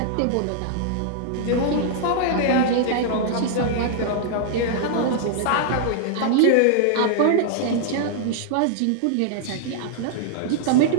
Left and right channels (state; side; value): different; both; correlation -0.01